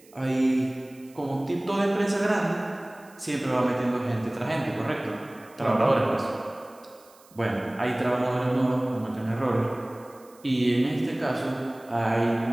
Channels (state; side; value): noise; right; hiss, 27 dB below the sound